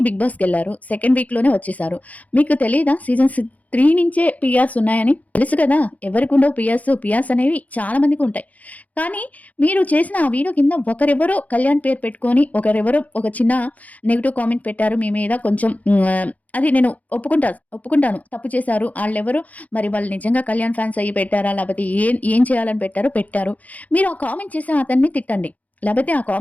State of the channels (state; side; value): late; right; 0.074 ms